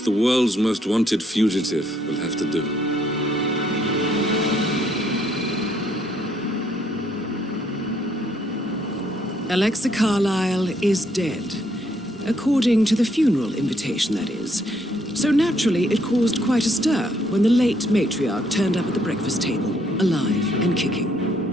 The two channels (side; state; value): both; normal; correlation 0.70